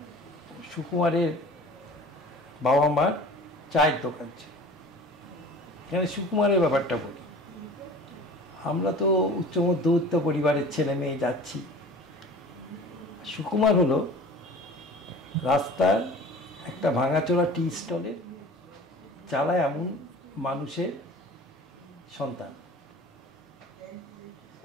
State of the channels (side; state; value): both; normal; correlation 0.43